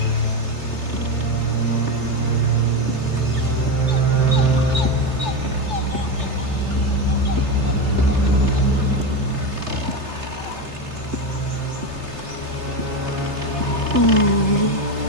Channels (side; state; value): left; late; 3.3 ms